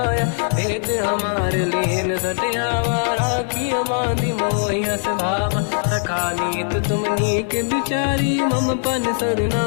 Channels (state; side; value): silent; right; 65 dB below the other